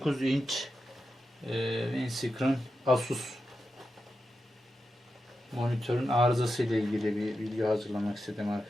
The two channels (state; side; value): normal; both; correlation 0.89